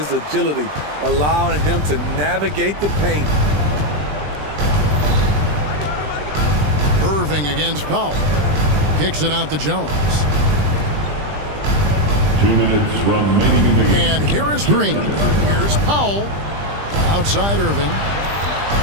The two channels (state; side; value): late; left; 20 ms